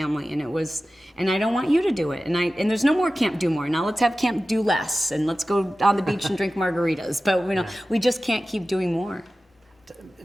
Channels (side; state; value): both; normal; correlation 0.95